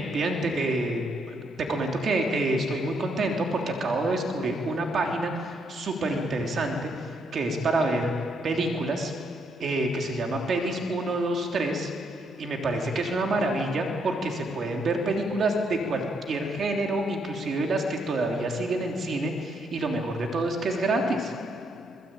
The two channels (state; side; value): normal; both; correlation 0.74